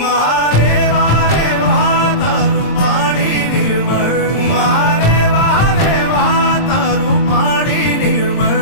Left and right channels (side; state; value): right; late; 26 ms